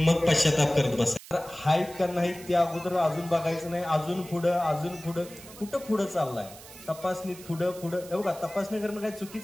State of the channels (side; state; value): right; noise; hiss, 18 dB below the sound